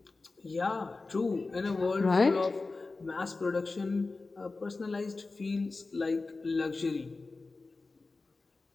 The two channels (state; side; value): quieter; right; 3.7 dB